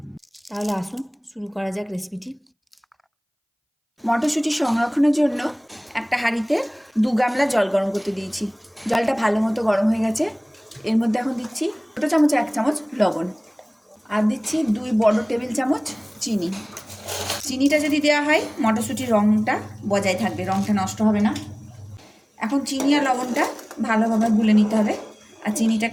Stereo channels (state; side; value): identical; both; correlation 1.00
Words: তাহলে আসুন শুরু করা যাক রেসিপিটি। মটরশুঁটি সংরক্ষণের জন্য একটা হাঁড়িতে 2 গামলা জল গরম করতে দিয়েছি। জলটা ভালো মতো গরম হয়ে গেছে। এর মধ্যে এখন দিচ্ছি ছোটো চামচে 1 চামচ লবণ, আর দিচ্ছি 2 বড় টেবিল চামচ চিনি। চিনিটা যদি দেওয়া হয় মটরশুঁটির রঙটা বজায় থাকবে, রঙটা নষ্ট হবে না। এখন চিনি আর লবণটা ভালোভাবে গুলে নিতে হবে আর